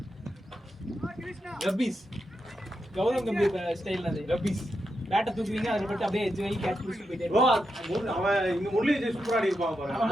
ரப்பீஸ் கௌதம் கம்பீர் ஸ்டைல்ல அது ரப்பீஸ் பேட்ட தூக்குவீங்க அதுல போட்டு அப்படியே எட்ஜ் வரைக்கும் கேட்ச் பிடிச்சிட்டு போயிட்டே ப்ரோ அவன் இங்க முரளி சூப்பரா ஆடி இருப்பான்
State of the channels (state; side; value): normal; both; correlation 0.86